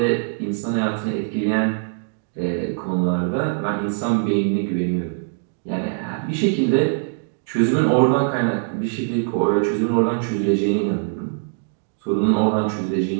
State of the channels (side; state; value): left; silent; 64 dB below the other